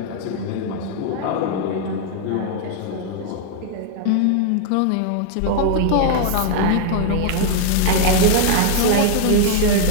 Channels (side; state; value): both; different; correlation -0.01